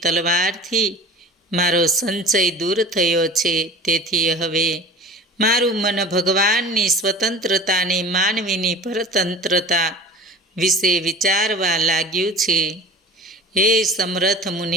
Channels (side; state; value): both; normal; correlation 0.38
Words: તલવારથી મારો સંશય દૂર થયો છે. તેથી હવે મારું મન ભગવાનની સ્વતંત્રતાની માનવીની પરતંત્રતા વિશે વિચારવા લાગ્યું છે. હે સમર્થ